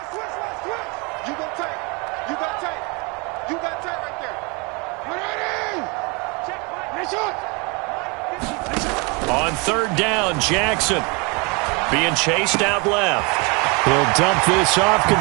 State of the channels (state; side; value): quieter; left; 29.9 dB